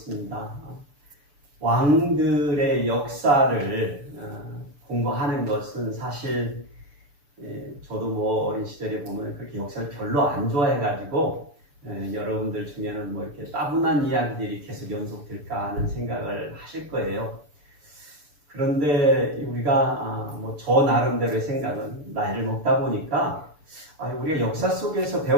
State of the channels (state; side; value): late; left; 6.9 ms